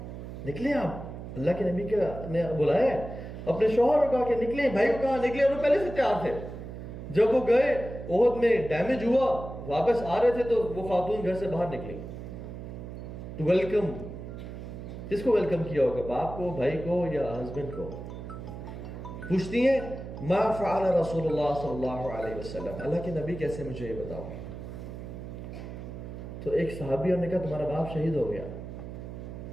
نکلے آپ اللہ کے نبی نے بلایا ہے. اپنے شوہر کو کہا کہ نکلیں بھائی کو کہا نکلے اور وہ پہلے سے تیار تھے. جب وہ گئے احد میں ڈیمیج ہوا واپس آ رہے تھے تو وہ خاتون گھر سے باہر نکلی ٹو ویلکم کس کو ویلکم کیا ہوگا؟ باپ کو، بھائی کو یا ہسبینڈ کو؟ پوچھتی ہیں ما فعل رسول اللہ صلی اللہ علیہ وسلم، اللہ کے نبی کیسے، مجھے یہ بتاؤ. تو ایک صحابی نے کہا تمہارا باپ شہید ہو گیا.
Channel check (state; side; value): noise; right; hum, 10 dB below the sound